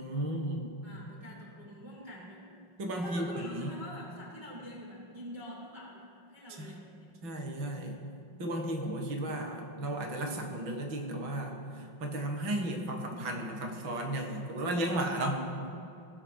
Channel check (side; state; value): left; late; 5.5 ms